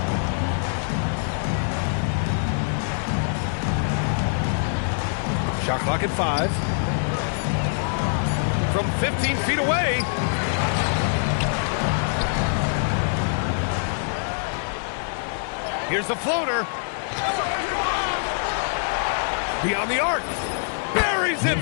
Shot clock at 5. From 15 feet away. Here's the floater. Beyond the arc. Buries it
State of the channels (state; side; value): silent; right; digital silence